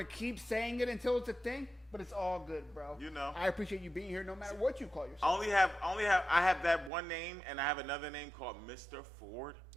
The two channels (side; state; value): left; drops out; at 6.9 s